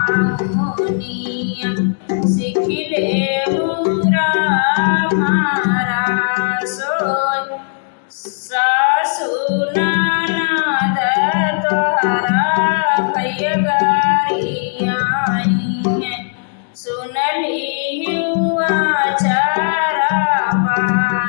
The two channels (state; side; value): silent; right; digital silence